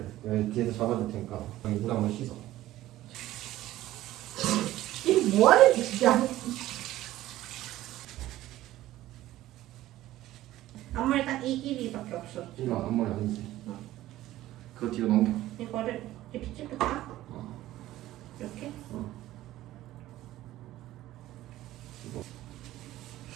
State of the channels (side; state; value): left; quieter; 15.1 dB